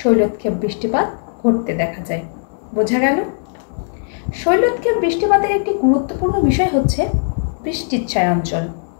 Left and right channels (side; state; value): right; silent; 66 dB below the other